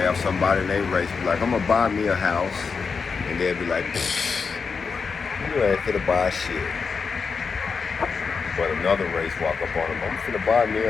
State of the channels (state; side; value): quieter; right; 5.3 dB